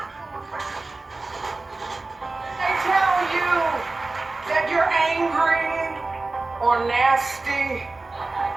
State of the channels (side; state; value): left; quieter; 3.4 dB